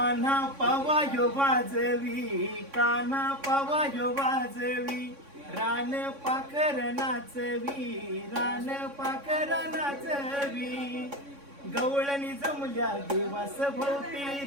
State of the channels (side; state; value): left; late; 3.6 ms